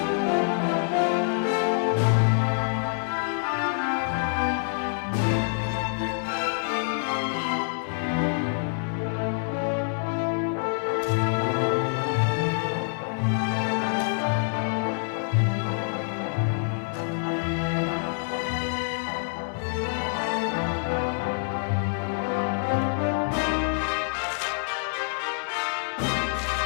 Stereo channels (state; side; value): silent; right; 61 dB below the other